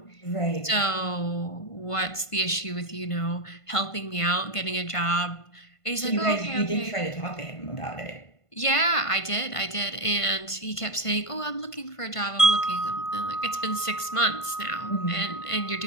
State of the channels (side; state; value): right; late; 1.5 ms